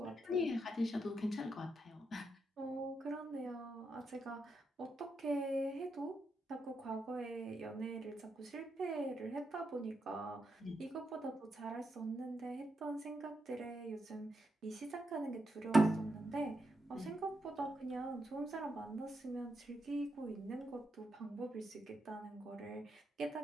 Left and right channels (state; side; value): normal; both; correlation 0.83